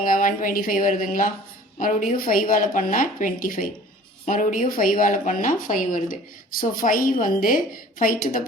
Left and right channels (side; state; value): both; normal; correlation 0.48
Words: 125 வருதுங்களா? மறுபடியும் 5ஆல் பண்ணால் 25, மறுபடியும் 5ஆல் பண்ணால் 5 வருது. ஸோ 5 வந்து 5 to the